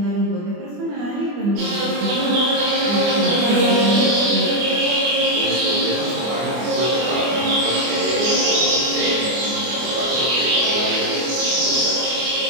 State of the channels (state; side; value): late; left; 24 ms